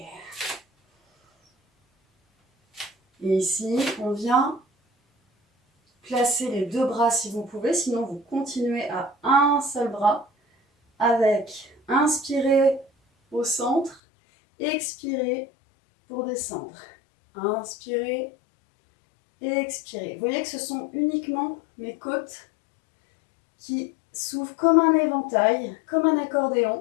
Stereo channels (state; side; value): drops out; right; at 14.0 s